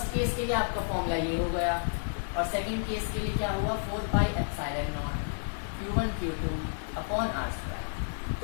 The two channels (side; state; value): right; silent; digital silence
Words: केस के लिए आपका फॉर्मूला ये हो गया और सेकंड केस के लिए क्या हुआ? 4 pi epsilon not Q1 Q2 upon r²।